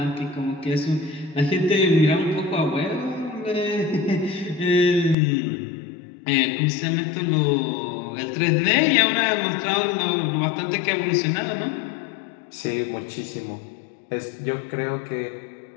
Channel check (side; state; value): right; drops out; at 5.2 s